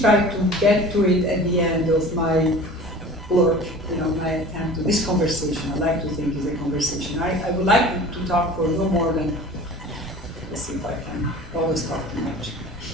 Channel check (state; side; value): normal; both; correlation 0.41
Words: try to get to it at the end of my work, my attempt to this conversation. I like to think is a conversation. I would like to talk for no more than, let's see if I can always talk too much.